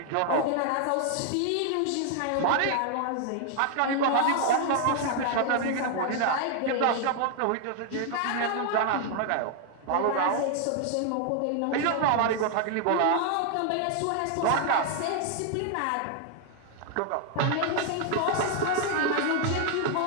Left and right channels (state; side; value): different; both; correlation 0.00